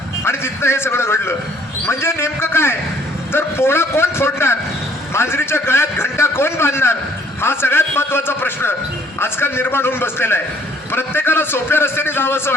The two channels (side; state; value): both; normal; correlation 0.60